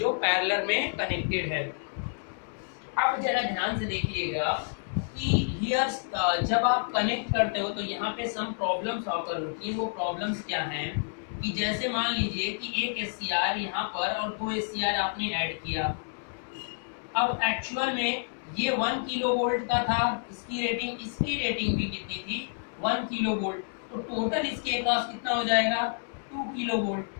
पैरेलल में कनेक्टेड है। अब जरा ध्यान से देखिएगा कि हियर जब आप कनेक्ट करते हो तो यहाँ पे सम प्रॉब्लम्स ऑकर होती हैं। वो प्रॉब्लम्स क्या हैं कि जैसे मान लीजिए कि एक SCR यहाँ पर और 2 SCR आपने ऐड किया। अब एक्चुअल में ये 1 किलोवोल्ट का था, इसकी रेटिंग भी कितनी थी, 1 किलोवोल्ट, तो टोटल इसके अक्रॉस कितना हो जाएगा, 2 किलोवोल्ट।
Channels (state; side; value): silent; right; digital silence